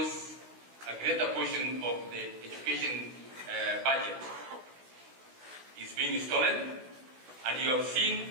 a greater portion of the education budget is being stolen, and you have seen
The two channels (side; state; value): left; late; 16 ms